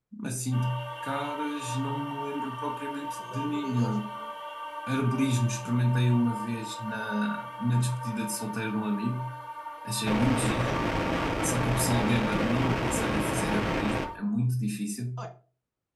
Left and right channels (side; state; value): both; identical; correlation 1.00